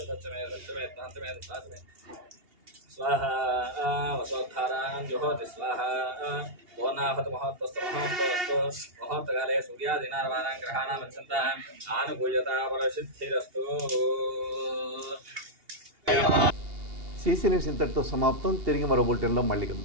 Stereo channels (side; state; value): left; late; 2.8 ms